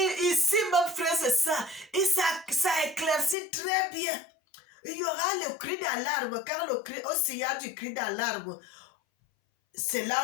ici, mon frère, c'est ça. Et ça éclaircit très bien. Il y aura le cri d'alarme. Quand au signal du cri d'alarme, c'est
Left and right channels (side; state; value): right; drops out; at 3.4 s